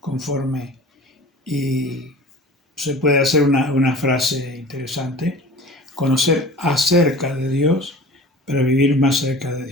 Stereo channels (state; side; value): normal; both; correlation 0.40